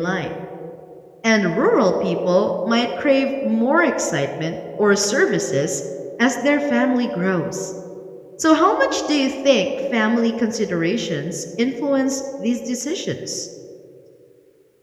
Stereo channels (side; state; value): both; identical; correlation 1.00